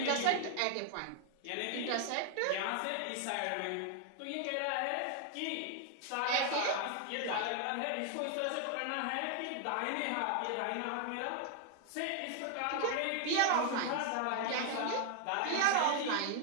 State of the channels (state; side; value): different; both; correlation 0.00